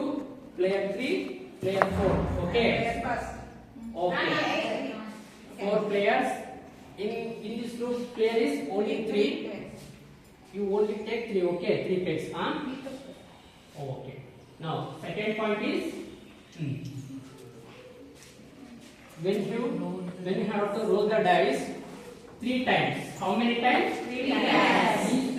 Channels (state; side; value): identical; both; correlation 1.00